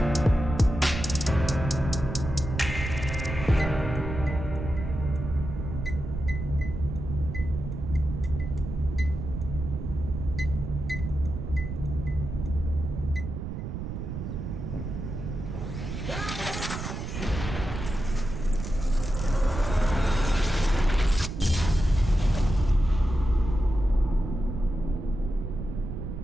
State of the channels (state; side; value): noise; right; rumble, 6 dB below the sound